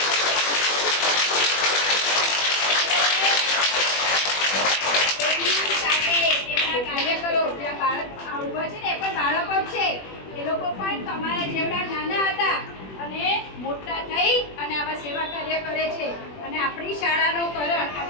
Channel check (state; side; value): late; right; 21 ms